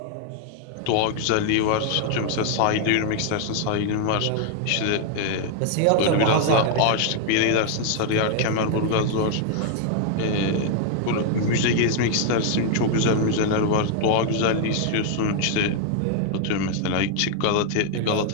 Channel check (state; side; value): different; both; correlation 0.00